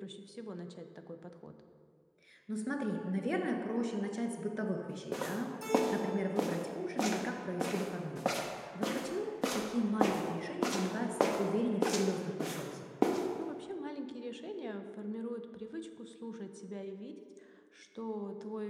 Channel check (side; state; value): both; identical; correlation 1.00